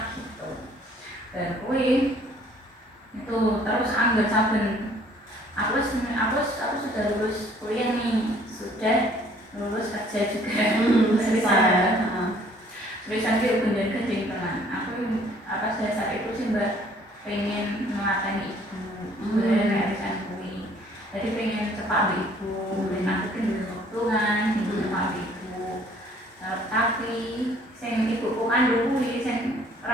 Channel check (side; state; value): both; normal; correlation 0.58